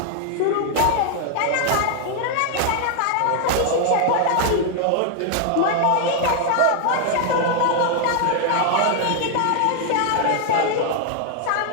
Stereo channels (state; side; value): different; both; correlation 0.00